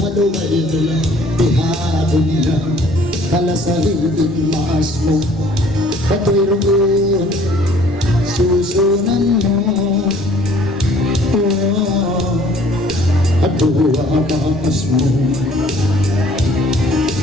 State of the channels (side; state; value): both; normal; correlation 0.56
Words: nila, pihado nila. Kalasahin din maas mo, patoy rin, susunan mo. At buwa maas mo.